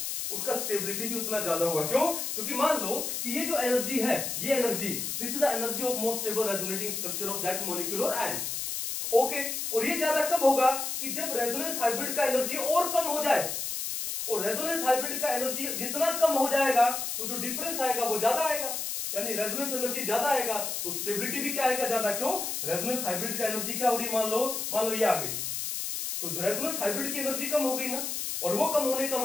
उसका स्टेबिलिटी भी उतना ज्यादा होगा। क्यों? क्योंकि मान लो कि ये जो एनर्जी है, ये energy, this is the energy of most stable resonating structure of that molecule और आयन। ओके, और ये ज्यादा कब होगा? कि जब रेजोनेंस हाइब्रिड का एनर्जी और कम हो जाए। और रेजोनेंस हाइब्रिड का एनर्जी जितना कम हो जाएगा तो जो डिफरेंस आएगा वो ज्यादा आएगा, यानी रेजोनेंस एनर्जी ज्यादा आएगा तो स्टेबिलिटी भी क्या आएगा? ज्यादा। क्यों? रेजोनेंस हाइब्रिड का एनर्जी क्या हो रही है? मान लो ये आ गई, तो रेजोनेंस हाइब्रिड की एनर्जी कम हो गई ना, और वो कम होने का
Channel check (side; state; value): left; noise; hiss, 3 dB below the sound